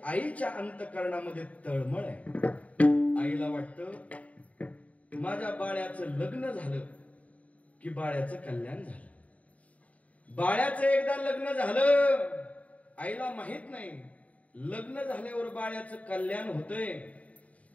आईच्या अंतःकरणामध्ये तळमळ आहे. आईला वाटतं माझ्या बाळ्याचं लग्न झालं की बाळ्याचं कल्याण झालं. बाळ्याचं एकदा लग्न झालं, आईला माहित नाही लग्न झाल्यावर बाळ्याचं कल्याण होतंय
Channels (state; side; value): late; right; 0.068 ms